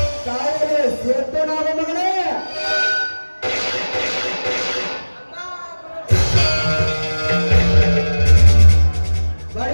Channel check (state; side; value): inverted; both; correlation -1.00